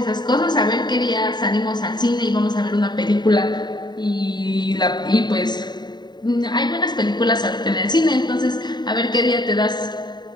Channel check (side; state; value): right; late; 0.21 ms